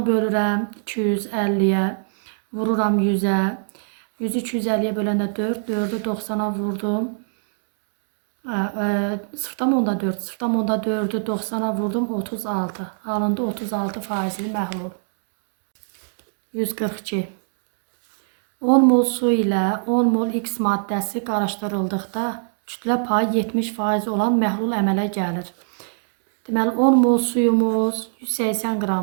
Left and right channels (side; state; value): left; silent; digital silence